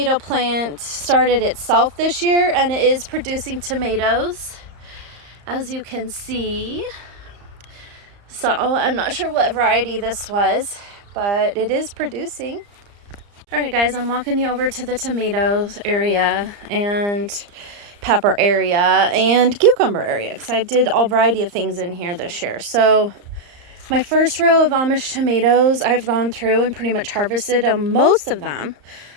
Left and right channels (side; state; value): left; late; 34 ms